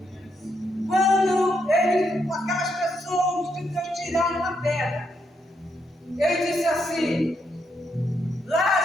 Quando ele, aquelas pessoas de Deus tiraram a pedra, ele disse assim:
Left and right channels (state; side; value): normal; both; correlation 0.79